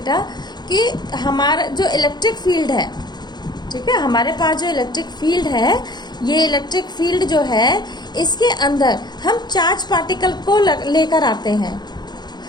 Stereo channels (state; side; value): late; right; 0.21 ms